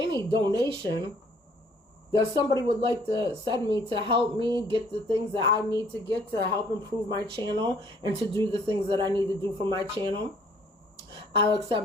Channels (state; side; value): normal; both; correlation 0.60